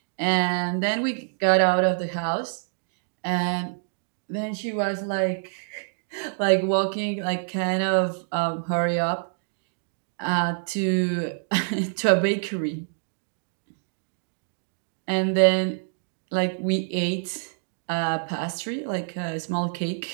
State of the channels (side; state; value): left; silent; digital silence